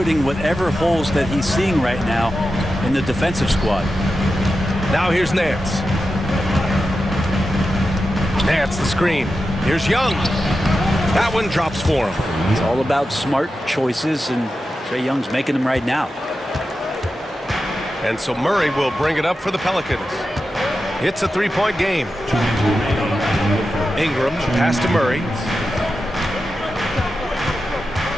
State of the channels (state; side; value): normal; both; correlation 0.91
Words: whatever holes that he's seeing right now in the defensive squad. Now here's Nance. Nance the screen. Here's Young. That one drops for him. It's all about smart choices, and Trae Young's making them right now. And so Murray will bring it up for the Pelicans. It's a 3-point game. Ingram, pass to Murray.